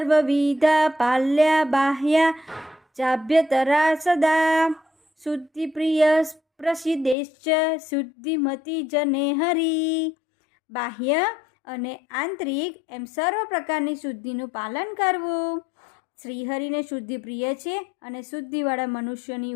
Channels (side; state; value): right; drops out; at 7.2 s